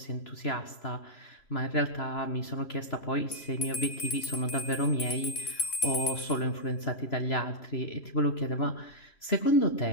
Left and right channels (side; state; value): right; late; 3.0 ms